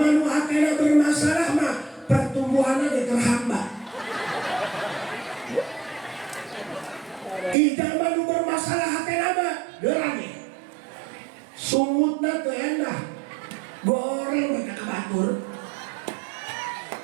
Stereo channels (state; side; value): drops out; left; at 7.6 s